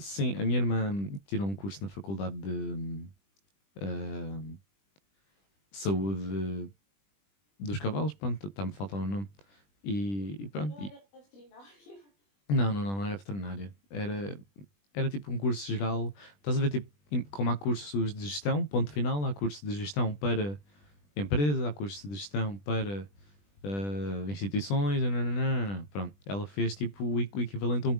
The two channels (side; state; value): right; late; 20 ms